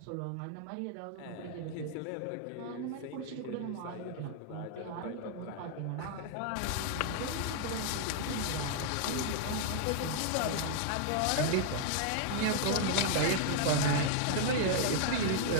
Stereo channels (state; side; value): different; both; correlation 0.00